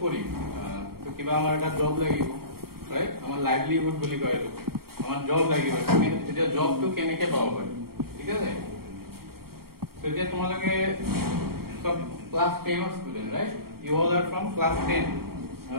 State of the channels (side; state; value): left; late; 0.94 ms